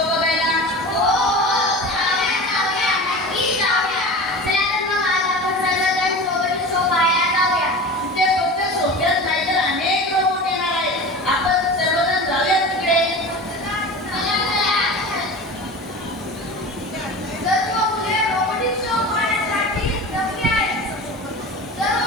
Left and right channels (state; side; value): normal; both; correlation 0.33